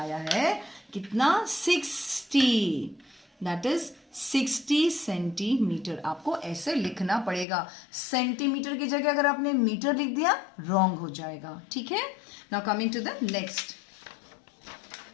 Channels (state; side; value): drops out; right; at 7.5 s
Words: है कितना? 60, दैट इज 60 सेंटीमीटर। आपको ऐसे लिखना पड़ेगा। सेंटीमीटर की जगह अगर आपने मीटर लिख दिया, रॉन्ग हो जाएगा। ठीक है, now coming to the next.